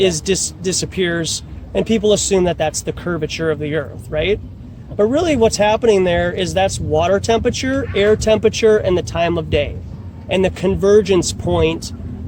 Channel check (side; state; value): both; identical; correlation 1.00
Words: and people assume that that's the curvature of the Earth, right? But really what's happening there is that's water temperature, air temperature, and the time of day and the convergence point